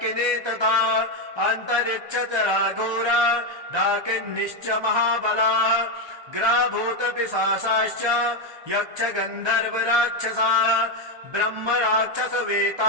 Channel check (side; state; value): left; late; 1.3 ms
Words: तथा अन्तरिक्षचरा घोरा डाकिन्निश्च महाबलाः ग्राभूतपिशाचाश्च यक्ष गन्धर्व राक्षसाः ब्रह्म राक्षस